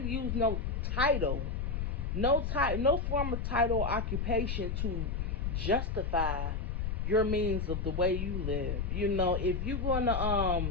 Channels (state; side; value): noise; left; rumble, 1 dB below the sound